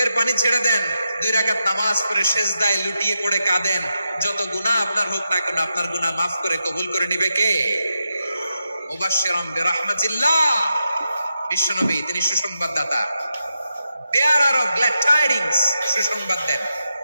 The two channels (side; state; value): both; inverted; correlation -0.86